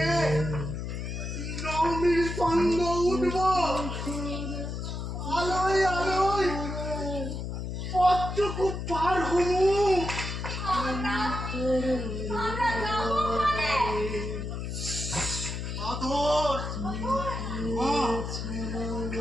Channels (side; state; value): left; noise; hum, 5 dB below the sound